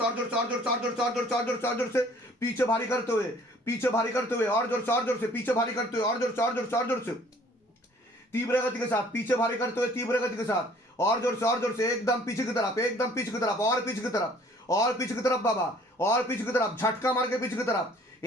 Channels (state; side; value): normal; both; correlation 0.55